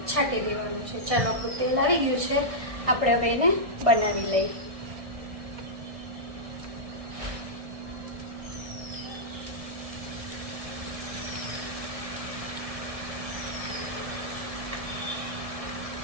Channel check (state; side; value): late; left; 1.6 ms